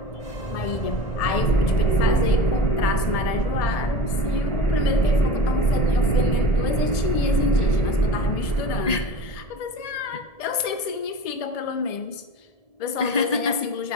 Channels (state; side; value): late; right; 1.7 ms